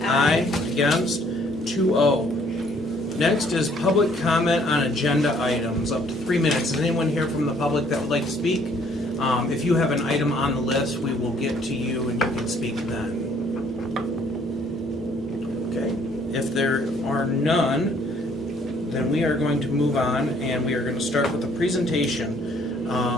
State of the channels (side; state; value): both; normal; correlation 0.62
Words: Aye. Against? 2-0. Next is public comment on agenda items, up to 3 minutes. Is anyone here from the public that would like to speak? If you have an item on the list, we will get to you and you can speak then. Okay. If there are none, then we are going to move on, and we are going to start with a presentation